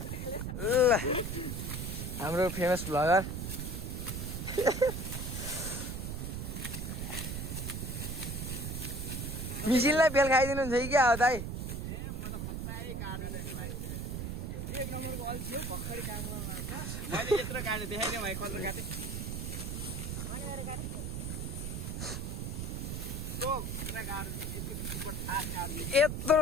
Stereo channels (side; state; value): right; noise; rumble, 4 dB below the sound